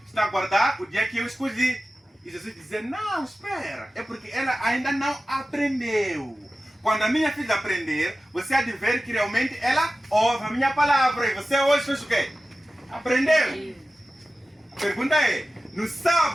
está a guardar o dia que eu escolhi. E Jesus dizia, não, espera, é porque ela ainda não aprendeu. Quando a minha filha aprender, você há de ver que realmente ela ouve a minha palavra. E você hoje fez o quê? Aprendeu. A pergunta é, No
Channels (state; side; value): normal; both; correlation 0.95